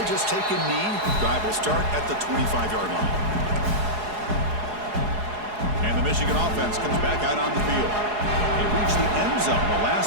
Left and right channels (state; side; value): late; left; 4.8 ms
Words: just take a knee. Drive will start at the 25-yard line. And the Michigan offense comes back out on the field. They reached the end zone the